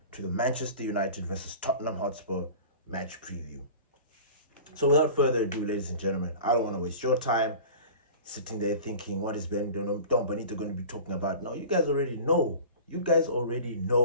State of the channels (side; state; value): both; inverted; correlation -0.38